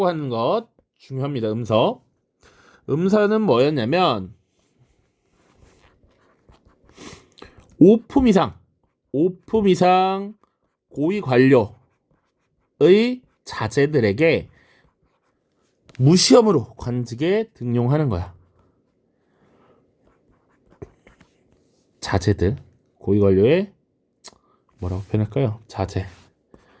하는 것 중요합니다. 음서. 음서는 뭐였냐면 5품 이상 고위 관료의 자제들에게 무시험으로 관직에 등용하는 거야. 자제들, 고위 관료의 뭐라고 표현할까요?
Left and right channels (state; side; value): identical; both; correlation 1.00